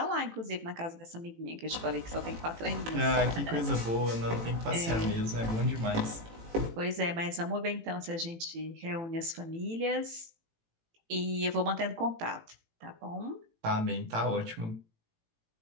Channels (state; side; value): late; left; 18 ms